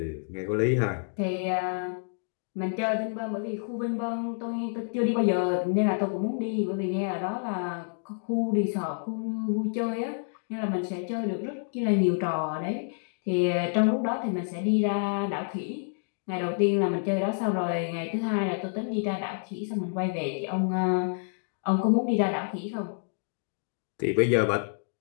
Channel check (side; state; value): right; silent; digital silence